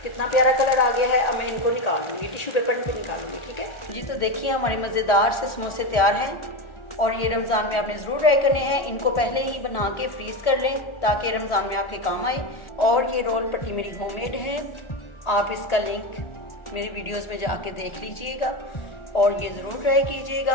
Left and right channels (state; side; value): late; right; 1.4 ms